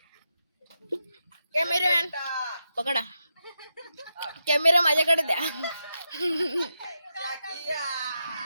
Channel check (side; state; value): both; inverted; correlation -0.86